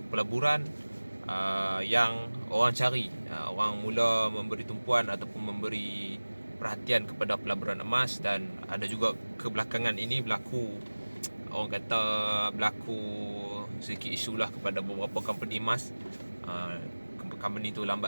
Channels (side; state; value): both; inverted; correlation -1.00